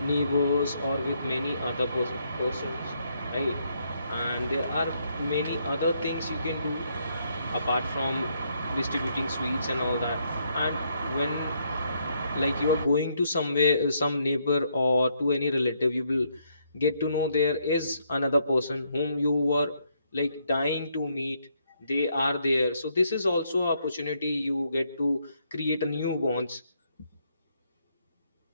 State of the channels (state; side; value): inverted; both; correlation -0.74